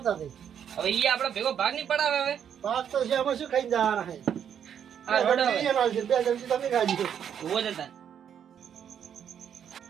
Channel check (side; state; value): left; quieter; 8.7 dB